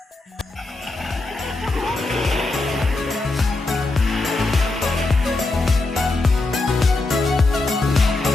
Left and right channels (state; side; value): quieter; right; 3.1 dB